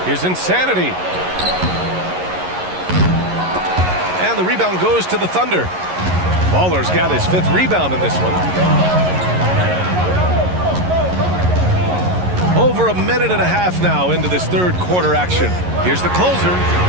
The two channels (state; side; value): late; left; 11 ms